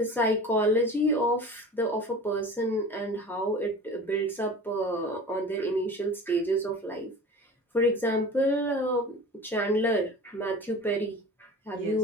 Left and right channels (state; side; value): normal; both; correlation 0.38